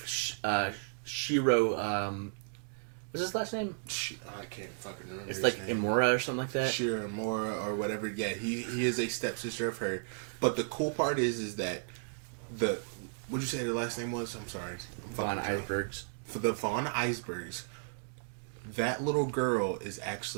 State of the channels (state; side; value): silent; left; digital silence